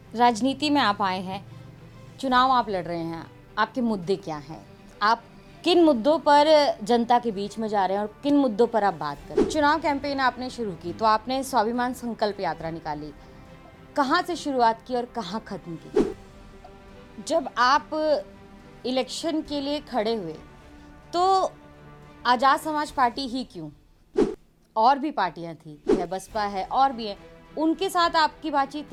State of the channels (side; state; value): both; identical; correlation 1.00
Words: राजनीति में आप आए हैं, चुनाव आप लड़ रहे हैं, आपके मुद्दे क्या हैं? आप किन मुद्दों पर जनता के बीच में जा रहे हैं और किन मुद्दों पर आप बात कर रहे हैं? चुनाव कैंपेन आपने शुरू की तो आपने स्वाभिमान संकल्प यात्रा निकाली। कहाँ से शुरुआत की और कहाँ खत्म की? जब आप इलेक्शन के लिए खड़े हुए तो आज़ाद समाज पार्टी ही क्यों? और भी पार्टियां थी, है बसपा है और भी है, उनके साथ आपकी बातचीत